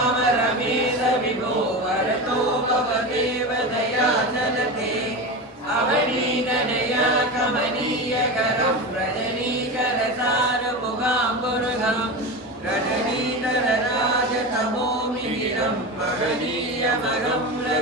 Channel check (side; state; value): both; normal; correlation 0.23